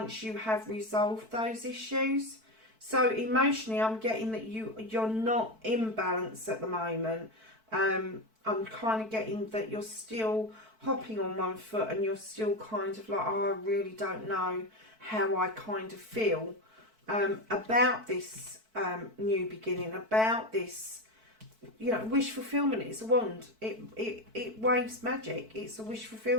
you have resolved those issues. So emotionally, I'm getting that you're not in balance at the moment. I'm kind of getting that you're still hopping on one foot and you're still kind of like, oh, I really don't know how I kind of feel about this new beginning, about this, you know, wish fulfillment. It's a wand. It waves magic. It's a wish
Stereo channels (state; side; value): late; left; 4.5 ms